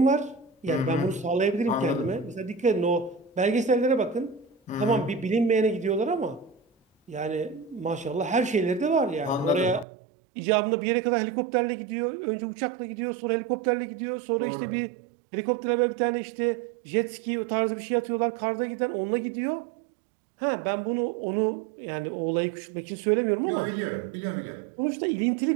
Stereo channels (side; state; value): left; drops out; at 9.9 s